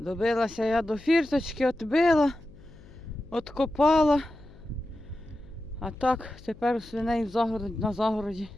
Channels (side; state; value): left; noise; hum, 22 dB below the sound